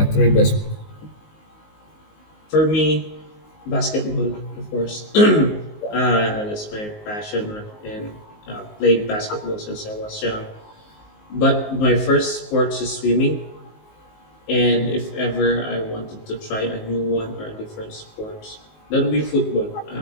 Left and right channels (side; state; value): right; late; 19 ms